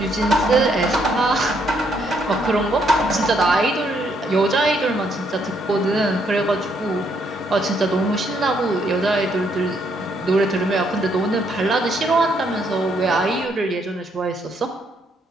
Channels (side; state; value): both; normal; correlation 0.72